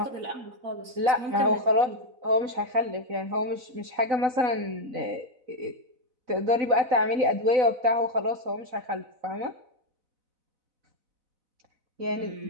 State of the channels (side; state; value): left; late; 4.0 ms